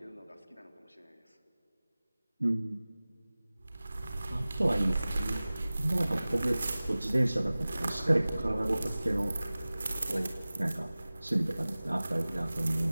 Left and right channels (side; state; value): both; inverted; correlation -0.98